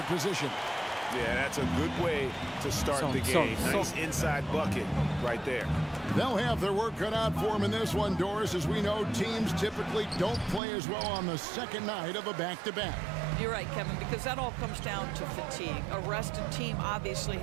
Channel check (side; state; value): left; drops out; at 10.6 s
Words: position. Yeah, that's a good way to start the game. Nice inside bucket right there. They'll have their work cut out for them in this one, Doris. As we know, teams typically don't play as well on the second night of a back-to-back. You're right, Kevin, because that all comes down to fatigue. A rested team obviously